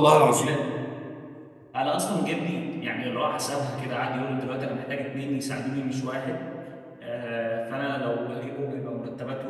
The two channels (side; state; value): both; identical; correlation 1.00